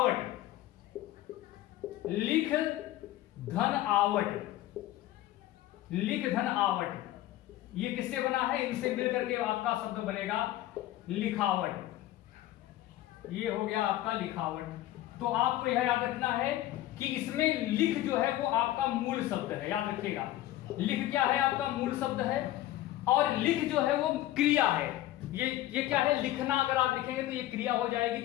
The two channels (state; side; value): quieter; right; 14.8 dB